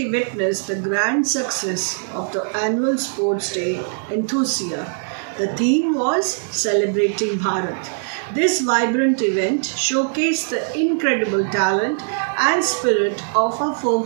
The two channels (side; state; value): left; silent; 65 dB below the other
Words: witnessed the grand success of the annual Sports Day Enthusia. The theme was Celebrating Bharat. This vibrant event showcased the incredible talent and spirit of our four